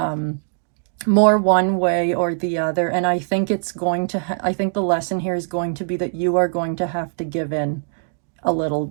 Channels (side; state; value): left; silent; digital silence